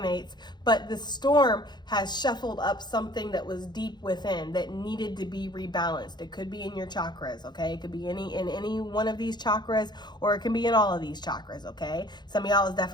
But the storm has shuffled up something that was deep within that needed to be rebalanced. It could be in your chakras, okay? It could be in any one of these chakras, or it can be in all of these chakras, okay? Some of y'all is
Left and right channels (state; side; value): late; right; 0.21 ms